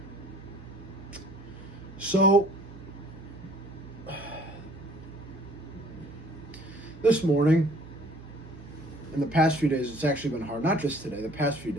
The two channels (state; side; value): noise; right; hum, 18 dB below the sound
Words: So, this morning, in the past few days, it's actually been hard. Not just today, the past few